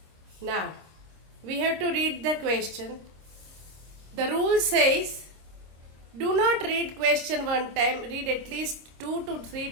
Now, we have to read the question. The rule says, do not read question one time, read at least 2 to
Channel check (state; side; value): late; left; 26 ms